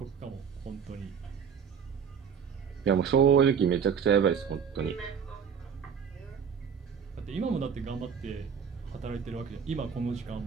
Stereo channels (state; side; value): quieter; left; 7.1 dB